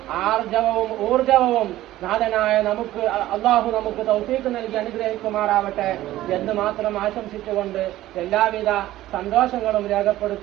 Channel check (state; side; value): quieter; left; 15.0 dB